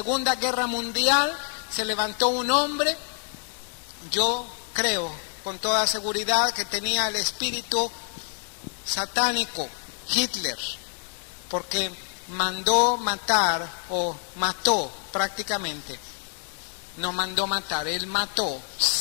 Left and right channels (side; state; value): right; silent; 60 dB below the other